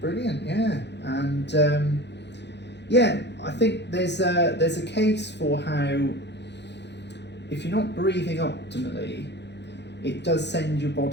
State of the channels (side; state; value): right; late; 0.50 ms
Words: brilliant, yeah. And yeah, I think there's a case for how if you're not breathing optimally, it does send your